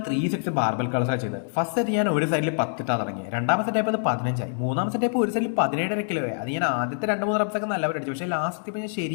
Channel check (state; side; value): silent; right; digital silence